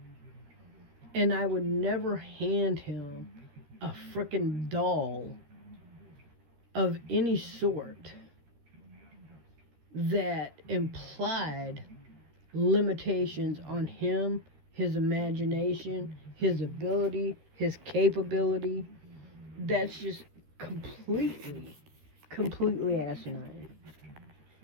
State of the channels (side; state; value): left; late; 13 ms